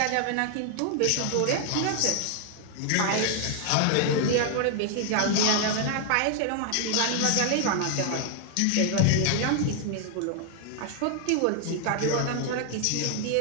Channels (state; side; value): different; both; correlation 0.00